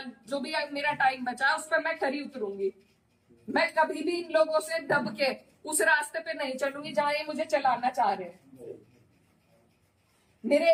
जो भी मेरा टाइम बचा उस पर मैं खरी उतरूंगी। मैं कभी भी इन लोगों से दब के उस रास्ते पे नहीं चलूंगी जहां ये मुझे चलाना चाह रहे हैं। मेरे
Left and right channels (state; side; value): identical; both; correlation 1.00